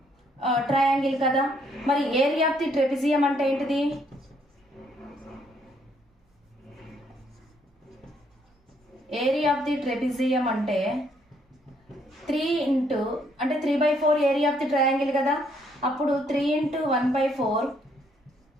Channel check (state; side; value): normal; both; correlation 0.69